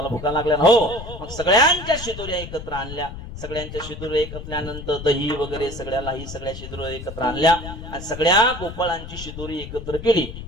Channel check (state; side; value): noise; left; rumble, 11 dB below the sound